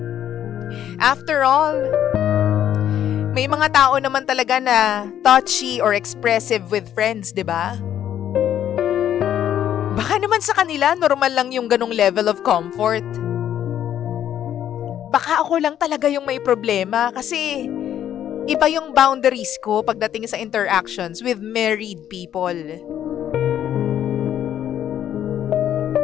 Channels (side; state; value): right; quieter; 10.5 dB